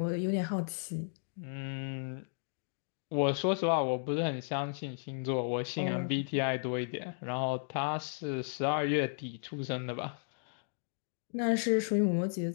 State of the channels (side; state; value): right; silent; digital silence